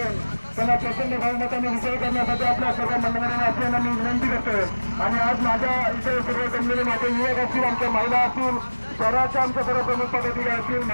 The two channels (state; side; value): inverted; both; correlation -1.00